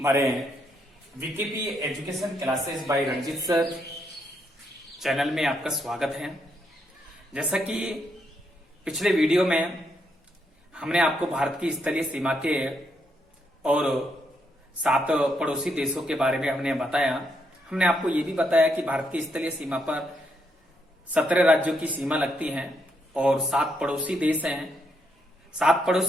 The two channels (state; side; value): normal; both; correlation 0.77